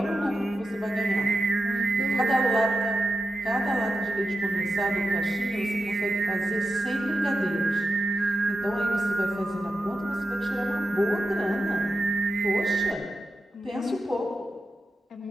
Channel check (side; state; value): both; normal; correlation 0.89